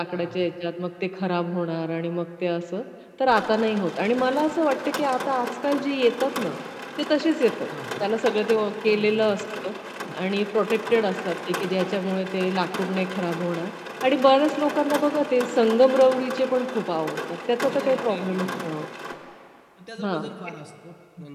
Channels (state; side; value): identical; both; correlation 1.00